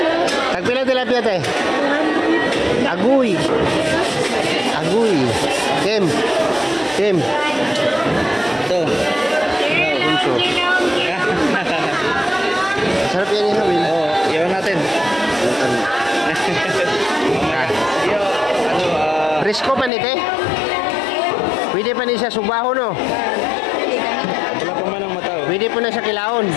Tagpila tilapia te? Aguy. Aguy. Kem. Kem. Ito. Punso. Sarap yan yung Will. Oo, iwan natin. Presko pa ni te? Pwede pa ni siya subaho no? Wala pa man ang mataw. Pwede po na sa kilaon.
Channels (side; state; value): right; drops out; at 19.9 s